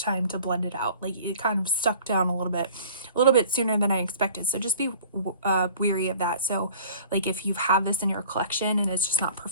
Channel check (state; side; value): inverted; both; correlation -0.48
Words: time to blend it out. Like it kind of stuck down a little bit sooner than I expected. So just be weary of that. So like if you have this in your collection and it's just not